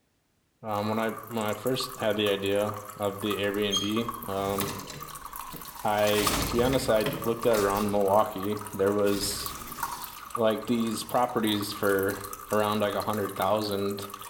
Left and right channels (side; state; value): both; identical; correlation 1.00